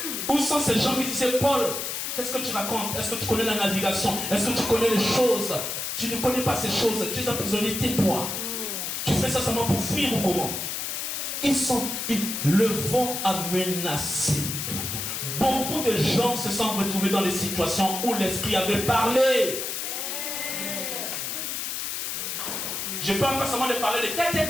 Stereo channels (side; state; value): left; noise; hiss, 3 dB below the sound